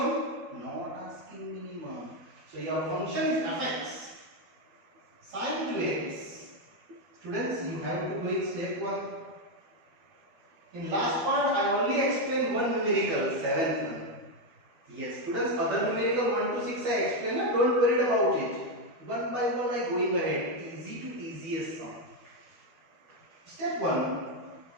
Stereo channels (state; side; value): late; left; 12 ms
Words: not asking minimum. So your function is fx sine 2x. Students, you have to go in step 1. In last part, I only explained one numerical, 7th one. Yes, students, other numerical 1 to 6 I explained, don't worry about it. One by one I going ahead, easy to easiest sum. Step 1,